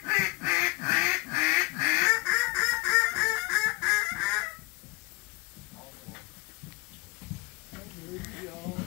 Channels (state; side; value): quieter; right; 23.9 dB